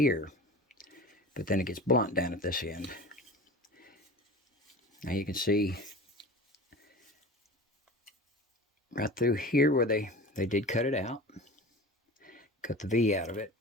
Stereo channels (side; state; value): both; normal; correlation 0.36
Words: But then it gets blunt down at this end. Now you can see right through here where they did cut it out. Cut the V out of it.